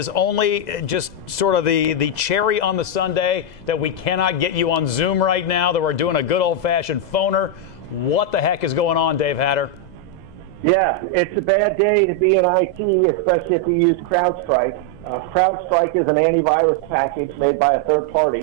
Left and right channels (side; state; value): right; late; 2.0 ms